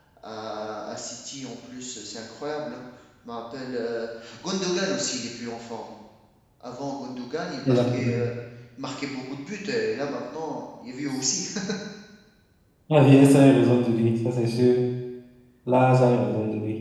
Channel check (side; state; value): both; identical; correlation 1.00